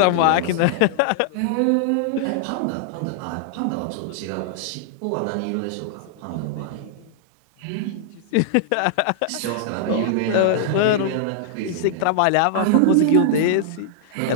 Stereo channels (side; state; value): both; different; correlation -0.01